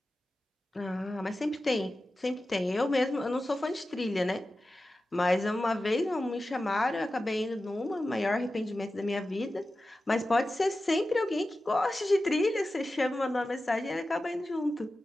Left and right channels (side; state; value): both; normal; correlation 0.94